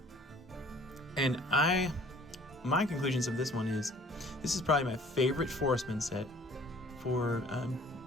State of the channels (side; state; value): both; normal; correlation 0.53